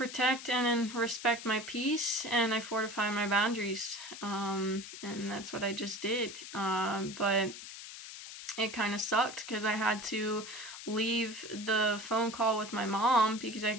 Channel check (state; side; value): noise; left; hiss, 12 dB below the sound